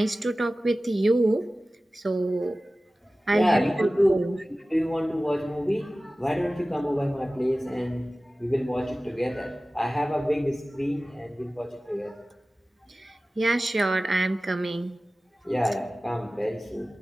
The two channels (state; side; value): normal; both; correlation 0.96